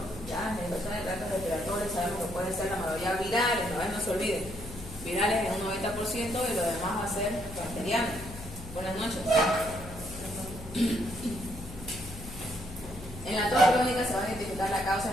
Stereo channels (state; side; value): noise; left; hum, 14 dB below the sound